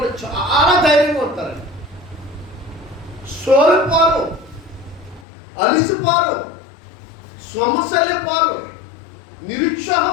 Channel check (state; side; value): drops out; right; at 5.2 s